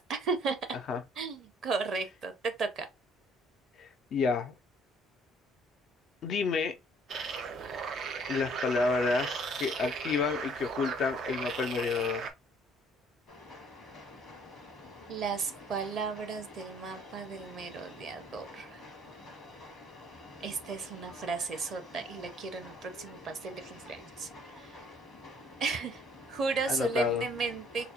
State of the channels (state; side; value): normal; both; correlation 0.59